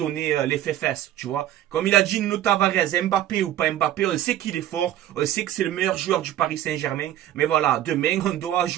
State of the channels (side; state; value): left; quieter; 12.4 dB